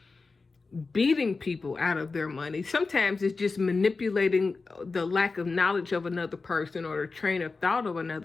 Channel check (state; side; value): quieter; right; 4.1 dB